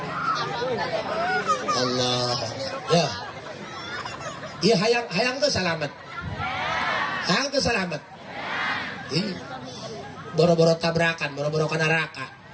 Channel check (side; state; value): both; identical; correlation 1.00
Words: Allah. Ya. Iya hayang tuh selamat. Hayang tuh selamat. Ih, boro-boro tabrakan, boro-boro ke neraka.